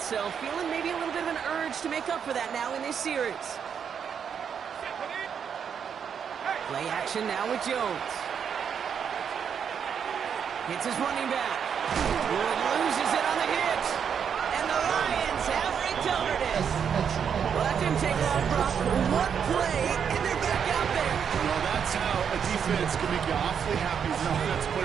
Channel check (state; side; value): quieter; left; 7.5 dB